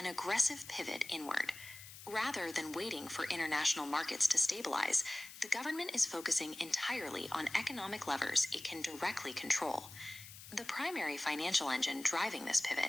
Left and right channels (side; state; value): left; noise; hiss, 15 dB below the sound